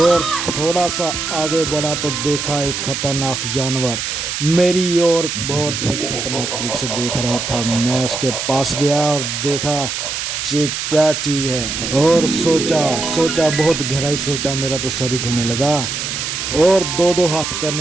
थोड़ा सा आगे बढ़ा तो देखा एक खतरनाक जानवर मेरी ओर बहुत ही खतरनाक तरीके से देख रहा था। मैं उसके पास गया और देखा ये क्या चीज़ है, और सोचा बहुत गहराई सोचा। मेरा तो सर ही घूमने लगा और दो हाथ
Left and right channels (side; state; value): right; noise; hiss, 3 dB below the sound